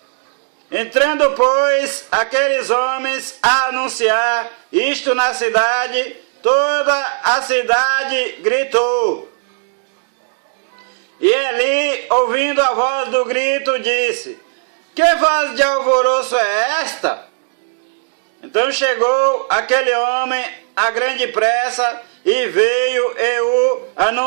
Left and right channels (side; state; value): left; silent; digital silence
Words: Entrando, pois, aqueles homens a anunciar isto na cidade, toda a cidade gritou. E Eli, ouvindo a voz do grito, disse: que voz de alvoroço é esta? Então chegou aquele homem a grande pressa, e veio e o